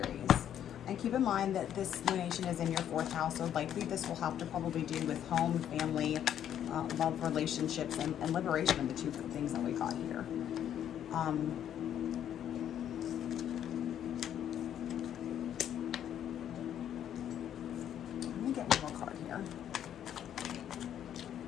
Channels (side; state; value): right; quieter; 10.1 dB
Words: And keep in mind that this lunation is in your 4th house, so likely this will have to probably do with home, family, love, relationships, and liberation, the 2 things that we got here. Let me get one more card here.